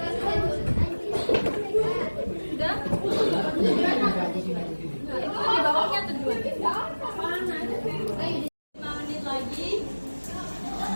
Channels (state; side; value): inverted; both; correlation -1.00